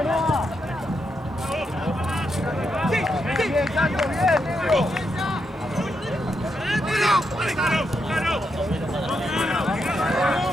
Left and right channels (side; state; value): both; normal; correlation 0.82